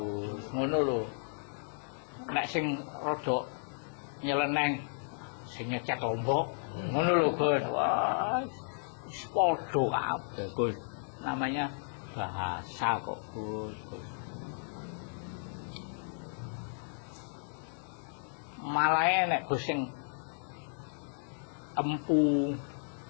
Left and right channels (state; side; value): silent; right; digital silence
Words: Ngono lho. Nek sing rada nyeleneng sing nyecet lombok, ngono lho, Gus. Wah, wis padha kabeh, Gus. Namanya bahasa kok, Gus. Malah nek Gus sing empu